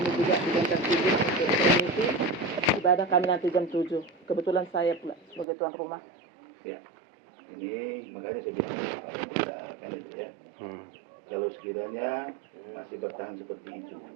juga digantar izin untuk permisi ibadah kami nanti jam 7. Kebetulan saya pula sebagai tuan rumah. Ya. Ini makanya saya bilang kan itu ya. Kalau sekiranya masih bertahan seperti itu,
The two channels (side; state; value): left; drops out; at 5.5 s